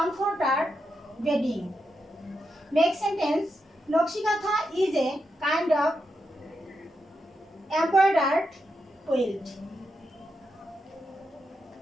bedding. Make sentence. Nokshikatha is a kind of embroidered quilt.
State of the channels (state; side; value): normal; both; correlation 0.85